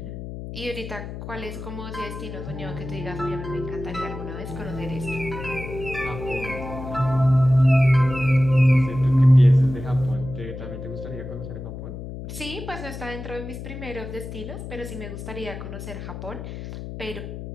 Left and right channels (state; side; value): noise; left; hum, 9 dB below the sound